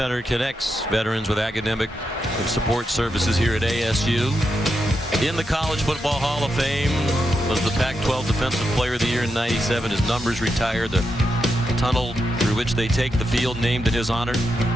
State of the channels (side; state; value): both; normal; correlation 0.85